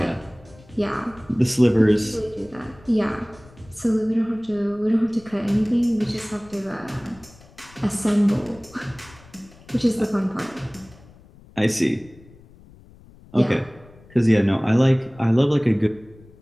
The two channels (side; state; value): left; noise; rumble, 24 dB below the sound